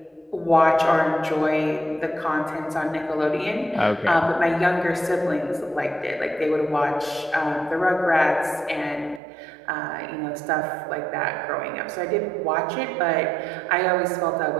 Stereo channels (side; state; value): left; drops out; at 9.2 s